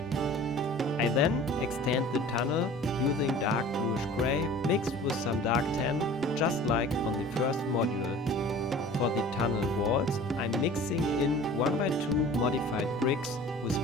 I then extend the tunnel using dark bluish gray mixed with some dark tan, just like on the first module. For the tunnel walls, I'm mixing in 1x2 modified bricks with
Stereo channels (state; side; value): normal; both; correlation 0.44